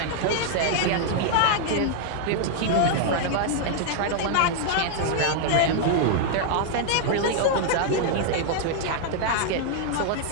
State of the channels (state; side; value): different; both; correlation 0.00